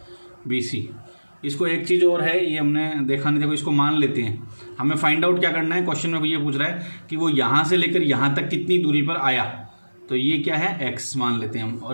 B C. इसको एक चीज़ और है, ये हमने देखा नहीं, देखो इसको मान लेते हैं। हमें फाइंड आउट क्या करना है, क्वेश्चन में ये पूछ रहा है कि वो यहाँ से लेकर यहाँ तक कितनी दूरी पर आया, तो ये क्या है x मान लेते हैं हम,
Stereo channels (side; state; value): both; inverted; correlation -1.00